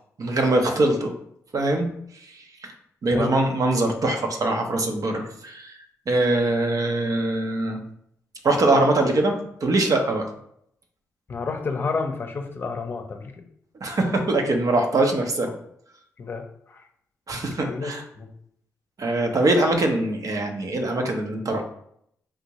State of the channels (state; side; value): normal; both; correlation 0.70